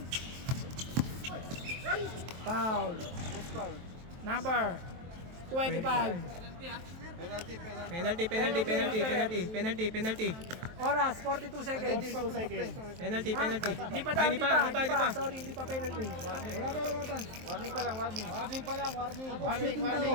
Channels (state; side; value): late; left; 23 ms